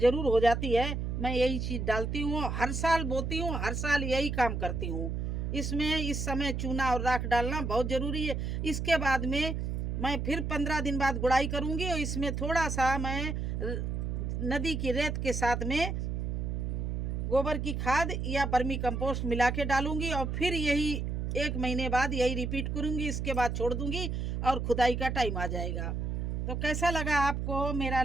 हो जाती है। मैं यही चीज़ डालती हूँ, हर साल बोती हूँ, हर साल यही काम करती हूँ। इसमें इस समय चूना और राख डालना बहुत ज़रूरी है। इसके बाद में मैं फिर 15 दिन बाद गुड़ाई करूँगी और इसमें थोड़ा सा मैं नदी की रेत के साथ में गोबर की खाद या बर्मी कंपोस्ट मिला के डालूंगी और फिर यही 1 महीने बाद यही रिपीट करूंगी। इसके बाद छोड़ दूंगी और खुदाई का टाइम आ जाएगा। तो कैसा लगा आपको मेरा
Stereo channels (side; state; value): right; noise; hum, 2 dB below the sound